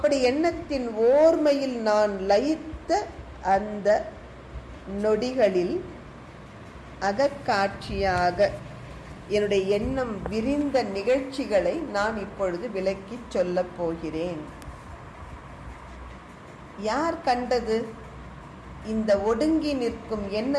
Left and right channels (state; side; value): identical; both; correlation 1.00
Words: எண்ணத்தின் ஓர்மையில் நான் லயித்த அந்த நொடிகளில் அகக்காட்சியாக என்னுடைய எண்ணம் விரிந்த நிகழ்ச்சிகளை நான் இப்பொழுது விளக்கி சொல்லப் போகிறேன். யார் கண்டது? இந்த ஒடுங்கி நிற்கும்